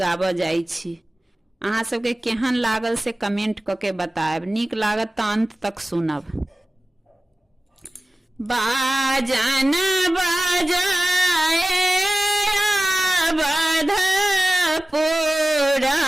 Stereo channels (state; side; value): normal; both; correlation 0.97